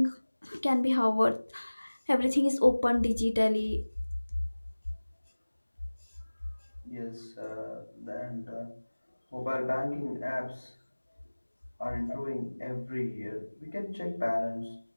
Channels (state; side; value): inverted; both; correlation -1.00